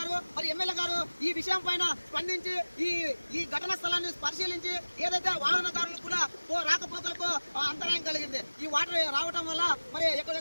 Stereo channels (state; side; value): inverted; both; correlation -1.00